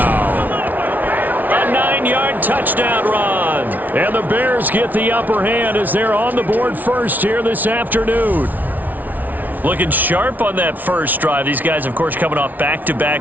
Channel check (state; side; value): late; left; 0.080 ms